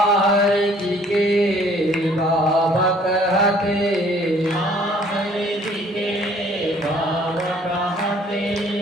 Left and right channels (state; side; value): normal; both; correlation 0.58